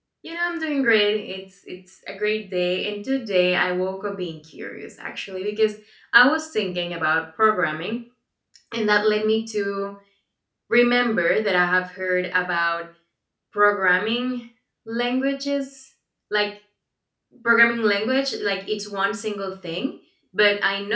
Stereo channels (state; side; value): identical; both; correlation 1.00